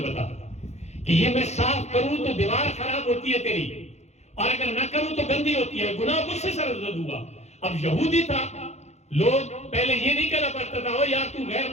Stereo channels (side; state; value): right; late; 0.32 ms